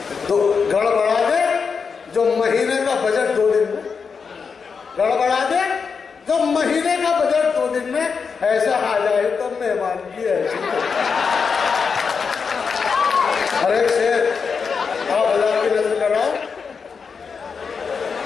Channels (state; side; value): quieter; right; 5.6 dB